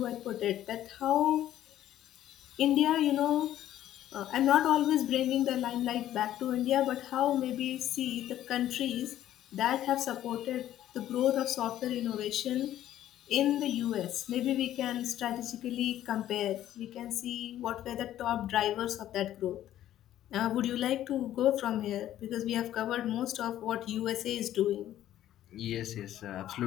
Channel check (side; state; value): right; quieter; 12.5 dB